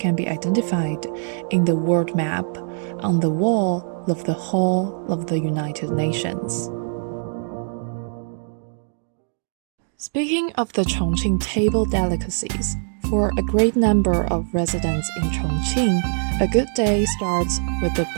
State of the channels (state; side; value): silent; left; digital silence